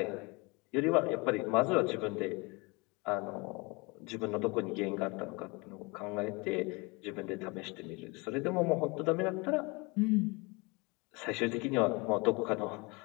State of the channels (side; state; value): right; quieter; 27.1 dB